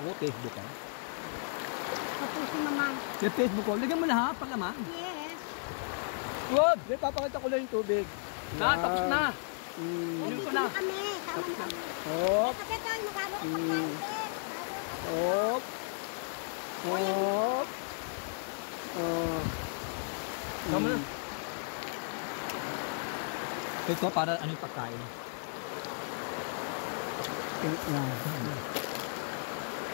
Facebook ako. Kapos si mama. May Facebook ko. Lagyan mo lahat, palaman. Yes. Wag! May papakita ko lang yung tubig. Na, tapos na. Hindi ko ko na. na kami. Tama kami. Hop. Kapit tayo, magkano? Hop. Hop. Oh. Tama. Ito para ano yung pagkain.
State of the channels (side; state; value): right; silent; digital silence